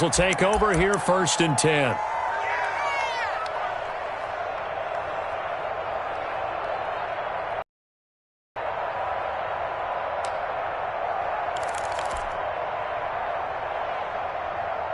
will take over here first and 10.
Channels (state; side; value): identical; both; correlation 1.00